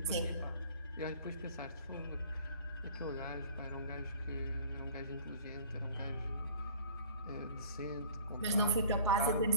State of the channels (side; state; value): both; inverted; correlation -0.47